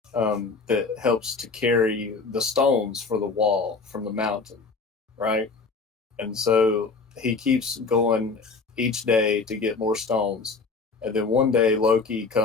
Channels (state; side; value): quieter; right; 4.3 dB